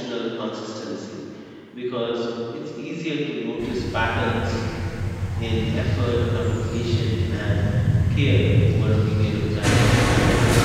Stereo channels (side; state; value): both; identical; correlation 1.00